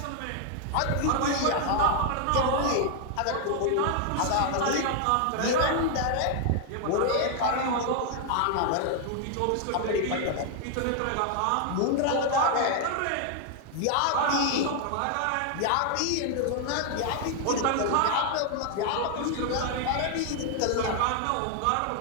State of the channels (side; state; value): both; different; correlation 0.00